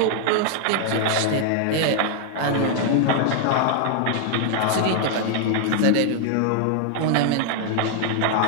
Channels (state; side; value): different; both; correlation 0.00